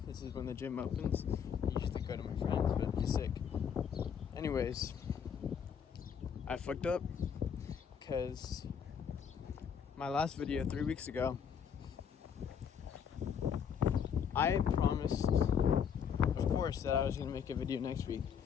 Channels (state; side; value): quieter; right; 7.5 dB